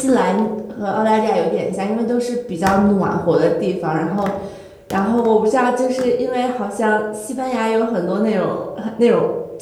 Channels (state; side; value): identical; both; correlation 1.00